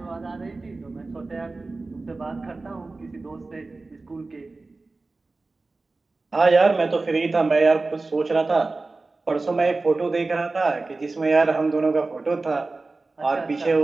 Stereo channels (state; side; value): quieter; left; 3.5 dB